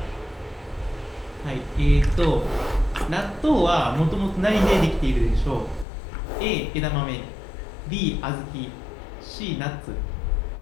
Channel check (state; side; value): drops out; right; at 5.9 s